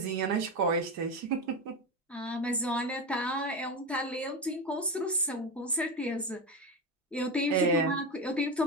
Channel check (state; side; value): normal; both; correlation 0.18